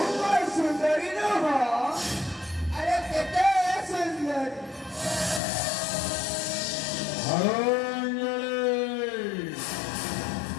सुंदरी न हो अरे केते सुंदरी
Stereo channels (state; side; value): drops out; right; at 5.4 s